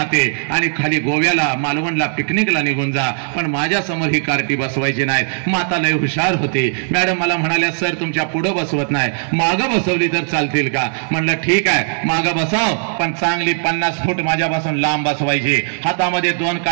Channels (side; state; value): left; silent; digital silence